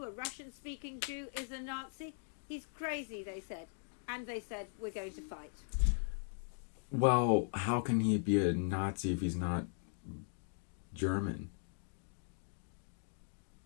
a Russian-speaking Jew, is a Nazi. He's crazy, they said. And they said, we're going to fight. Well, how can he be a Nazi if he's not German?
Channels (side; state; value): right; silent; digital silence